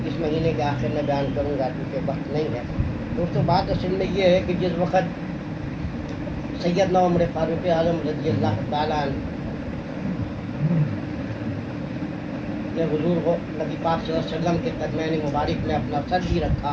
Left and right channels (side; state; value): both; identical; correlation 1.00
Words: اس مہینے کے آخر میں بیان کروں گا کیونکہ وقت نہیں ہے۔ دوستوں، بات اصل میں یہ ہے کہ جس وقت سیدنا عمر فاروق اعظم رضی اللہ تعالیٰ عنہ نے حضور نبی پاک صلی اللہ علیہ وسلم کے قدمین مبارک میں اپنا سر بھی